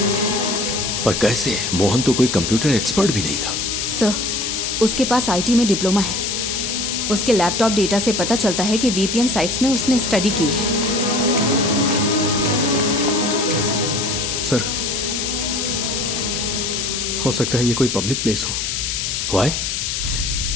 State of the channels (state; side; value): noise; left; hiss, 2 dB below the sound